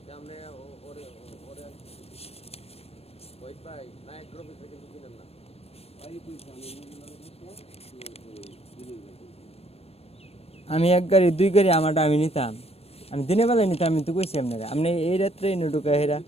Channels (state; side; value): late; right; 0.29 ms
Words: আমি এক গাড়ি দুই গাড়ি আমারটা আমি নিতাম, আমি দিনের বেলায় নিতাম। আমি তো কইছি আপনারা, আপনি এই রাত্রে এনে ঢুকা হেরা